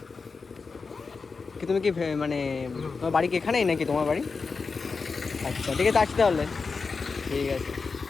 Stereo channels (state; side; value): quieter; right; 4.7 dB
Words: কি তুমি কি মানে তোমার বাড়ি কি এখানেই নাকি তোমার বাড়ি? আচ্ছা, ঠিক আছে, আসছি তাহলে। ঠিক আছে।